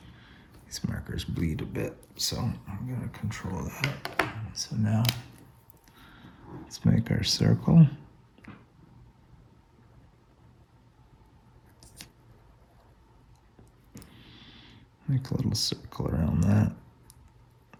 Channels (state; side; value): identical; both; correlation 1.00